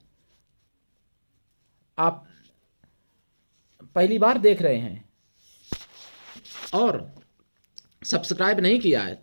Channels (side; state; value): both; inverted; correlation -1.00